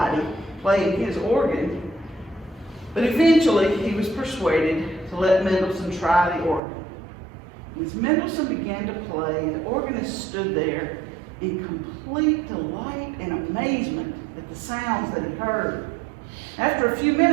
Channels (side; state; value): left; drops out; at 6.6 s